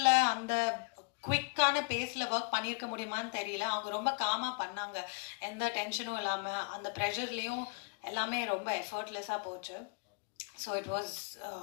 அந்த குவிக்கான பேஸில் work பண்ணியிருக்க முடியுமான்னு தெரியல. அவங்க ரொம்ப காமாக பண்ணாங்க, எந்த டென்ஷனும் இல்லாமல். அந்த ப்ரெஷர்லேயும் எல்லாமே ரொம்ப எஃபர்ட்லெஸ்ஸாக போச்சு. So it was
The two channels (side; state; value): right; quieter; 32.5 dB